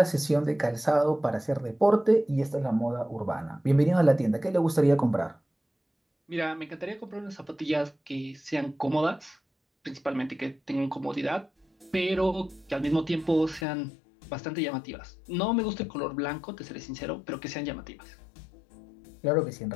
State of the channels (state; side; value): drops out; right; at 13.7 s